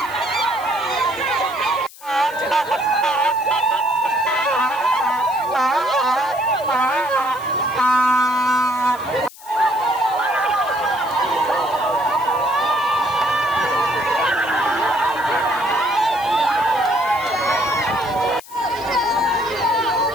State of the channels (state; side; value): noise; left; hiss, 20 dB below the sound